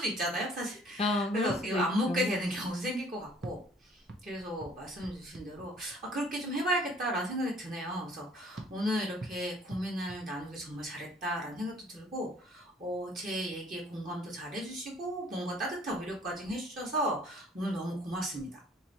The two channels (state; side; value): normal; both; correlation 0.56